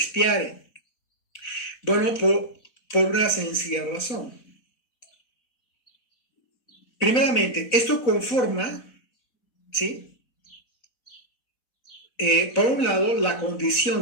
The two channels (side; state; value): right; late; 4.0 ms